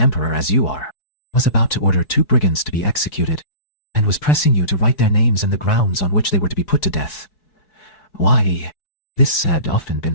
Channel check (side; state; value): right; late; 4.6 ms